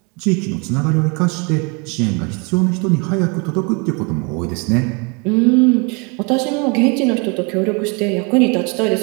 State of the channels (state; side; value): quieter; left; 32.0 dB